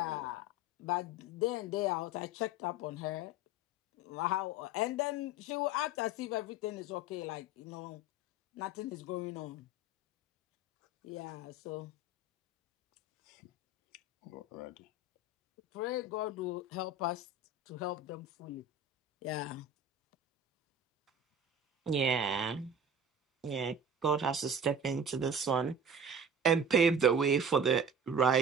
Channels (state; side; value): normal; both; correlation 0.37